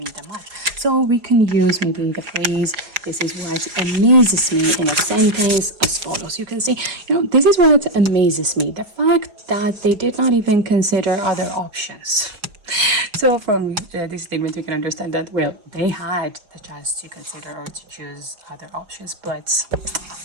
the match. So we can use maybe the phrase, this is what amazes me, in a sentence as follows. You can say, this is what amazes me, the fact that they did not even consider other options. So from this statement, you can understand that, well, they had the chance to consider or to choose other options, but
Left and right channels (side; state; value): left; late; 4.7 ms